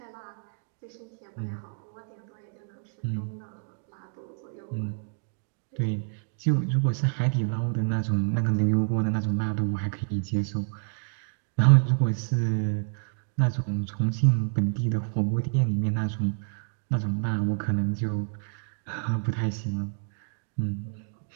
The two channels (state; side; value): silent; left; 59 dB below the other